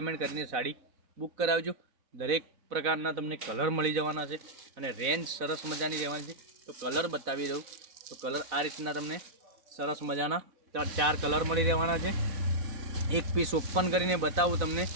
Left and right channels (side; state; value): left; late; 4.0 ms